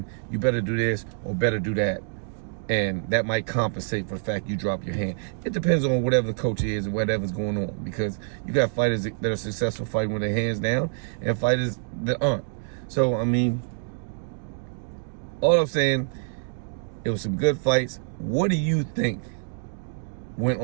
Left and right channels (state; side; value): silent; left; digital silence